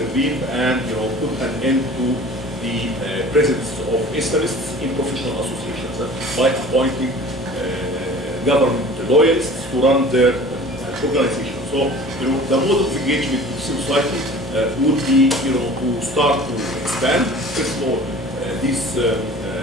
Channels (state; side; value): normal; both; correlation 0.44